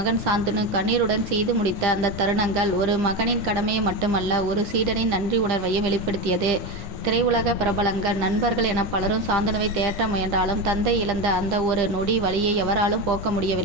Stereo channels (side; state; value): left; late; 9.9 ms